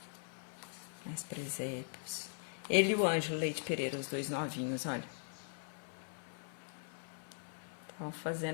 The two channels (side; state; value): right; silent; 51 dB below the other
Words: Mais presépios. Ele e o Ângelo Leite Pereira, os dois novinhos, olha. Estavam